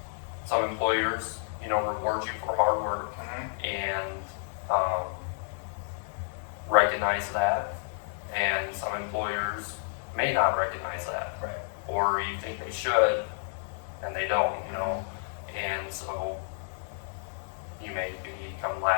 Some employers, reward you for hard work and recognize that, and some employers may not recognize that, Right. or you think they should, and they don't, and so you may become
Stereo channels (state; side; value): silent; right; digital silence